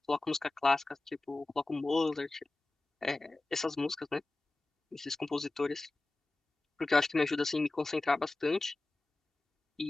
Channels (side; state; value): right; quieter; 3.0 dB